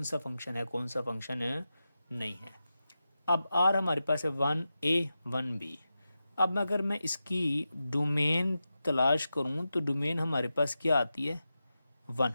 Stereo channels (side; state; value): both; inverted; correlation -0.91